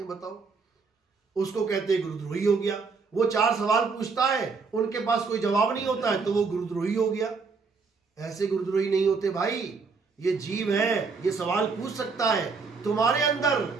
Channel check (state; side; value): quieter; left; 4.7 dB